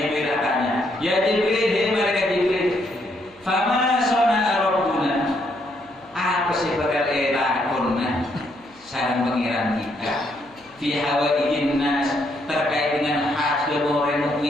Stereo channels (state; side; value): noise; right; hum, 29 dB below the sound